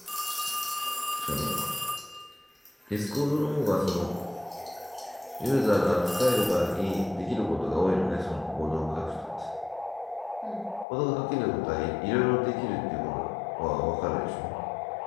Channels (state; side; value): drops out; right; at 10.9 s